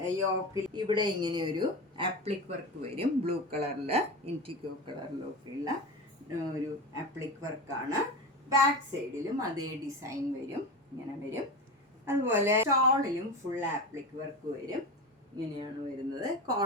യോക്കിൽ ഇവിടെ ഇങ്ങനെ ഒരു ആപ്ലിക് വർക്ക് വരും. ബ്ലൂ കളറിൽ ഇൻറ്റിക്കോ കളറിലൊക്കെയുള്ള ഒരു ആപ്ലിക് വർക്കാണ്. ബാക്ക് സൈഡിലും അതേ ഡിസൈൻ വരും. ഇങ്ങനെ വരും. അതുപോലെ ഷോളിലും ഫുൾ ആപ്ലിക് വർക്ക് വരും. ഇങ്ങനെയാണ് വരുന്നത്.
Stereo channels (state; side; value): normal; both; correlation 0.25